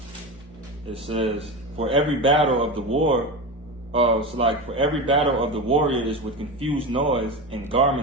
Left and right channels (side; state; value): both; normal; correlation 0.23